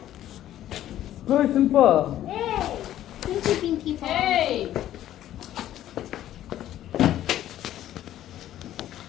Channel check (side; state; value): right; quieter; 12.6 dB